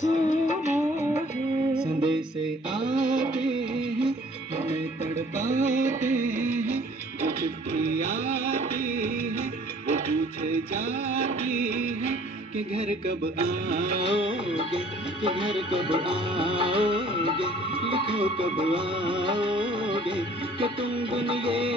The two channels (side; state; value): both; normal; correlation 0.55